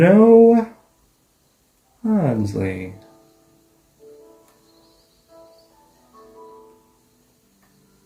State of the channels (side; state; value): both; identical; correlation 1.00